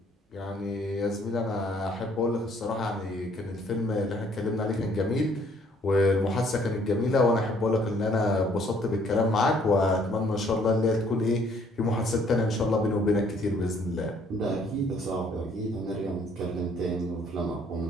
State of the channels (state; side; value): normal; both; correlation 0.63